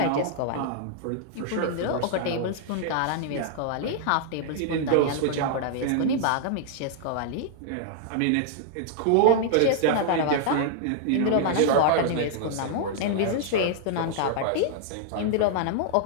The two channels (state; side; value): different; both; correlation -0.01